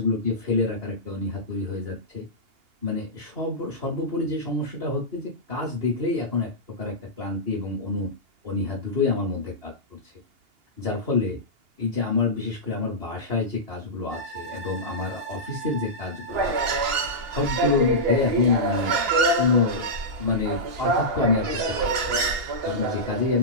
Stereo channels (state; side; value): late; left; 2.8 ms